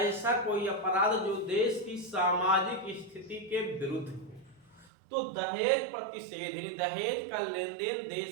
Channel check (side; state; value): left; drops out; at 4.9 s